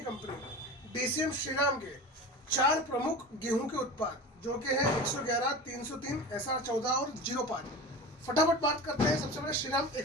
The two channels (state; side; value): normal; both; correlation 0.31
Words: कंपनी डीसीएम श्रीराम के 4 प्रमुख गेहूं के उत्पाद, जो कि है 111, 303, SR14 और 05। फटाफट बात करते हैं। सबसे पहले श्रीराम